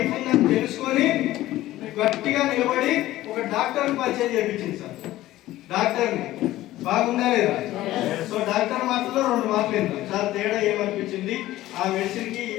ఉందని తెలుసుకొని గట్టిగా నిలబడి ఒక డాక్టర్ పరిచయం చేయించింది సార్. డాక్టర్ని బాగుందా లేదా? సో డాక్టర్ మాటల్లో 2 మాటలు ఏంటో సార్ తేడా ఏమనిపించింది, ఆ మెడిసిన్ కి ఈ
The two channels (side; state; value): right; quieter; 15.6 dB